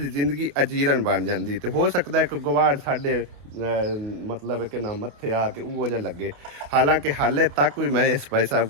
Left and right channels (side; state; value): left; late; 28 ms